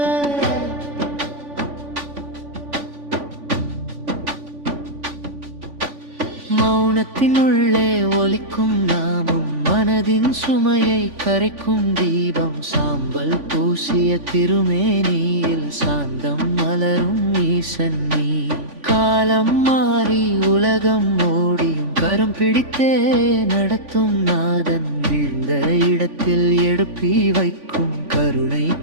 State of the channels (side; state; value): left; late; 3.5 ms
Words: மௌனத்தினுள்ளே ஒலிக்கும் நாமம் மனதின் சுமையை கரைக்கும் தீபம். சாம்பல் பூசிய திருமேனியில் சாந்தம் மலரும் ஈசன் நீ. காலம் மாறி உலகம் ஓடியும் கரம் பிடித்தே நடத்தும் நாதன். வீழ்ந்த இடத்தில் எடுப்பி வைக்கும் கருணை